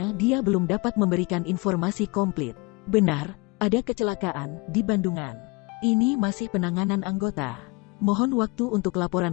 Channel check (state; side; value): quieter; right; 27.1 dB